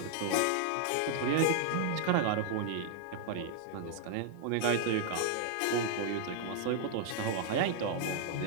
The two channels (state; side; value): different; both; correlation 0.00